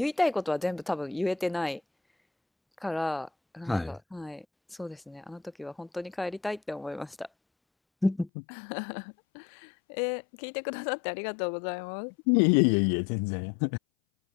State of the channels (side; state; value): right; drops out; at 8.3 s